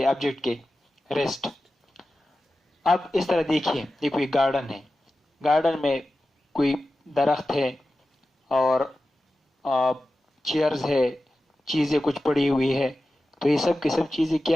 हैं ऑब्जेक्ट के? रेस्ट। अब इस तरह देखिए, ये कोई गार्डन है, गार्डन में कोई दरख्त है और चेयर्स है, चीज़ें कुछ पड़ी हुई है। तो ये सब की सब चीज़ें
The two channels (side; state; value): both; normal; correlation 0.93